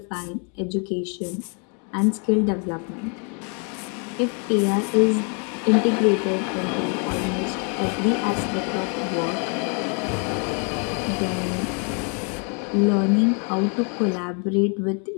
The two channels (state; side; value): quieter; right; 38.3 dB